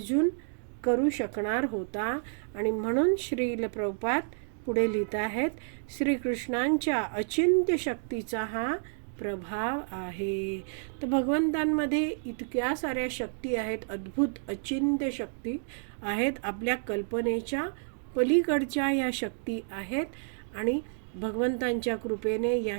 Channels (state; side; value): silent; left; digital silence